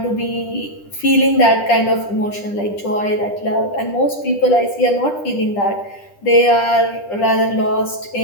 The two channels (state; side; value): late; right; 10 ms